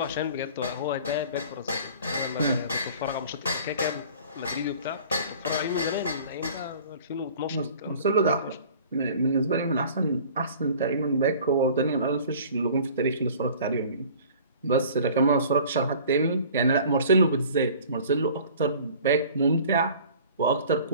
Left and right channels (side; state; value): both; inverted; correlation -0.47